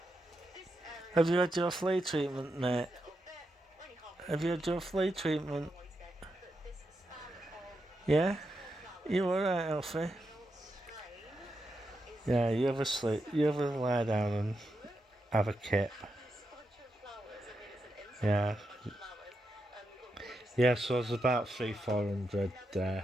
Have you had your flea treatment, mate? Have you had your flea treatment? Yeah? You alright, Elfie? Yeah, you ever sleep? You ever lie down and have a kip? Yeah. Yeah, so there's about 300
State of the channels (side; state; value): both; normal; correlation 0.85